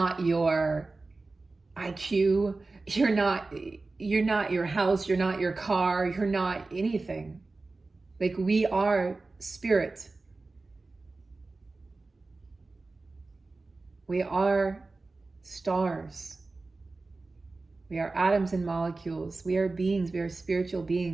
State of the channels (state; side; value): quieter; left; 3.5 dB